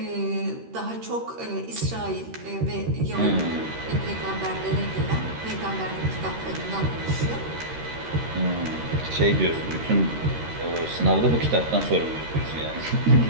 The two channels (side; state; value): left; late; 13 ms